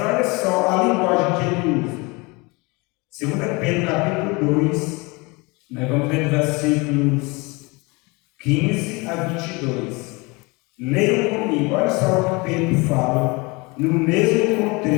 só a linguagem que ele usa. 2 Pedro capítulo 2, nós vamos ler versículos 15 a 22. Leiam comigo, olha só o que Pedro fala, no mesmo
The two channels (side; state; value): right; quieter; 26.5 dB